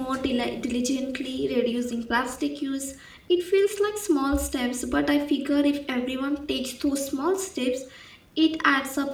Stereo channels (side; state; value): both; identical; correlation 1.00